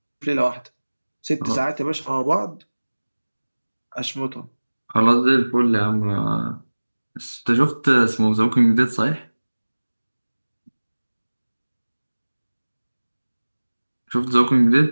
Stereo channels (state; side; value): inverted; both; correlation -1.00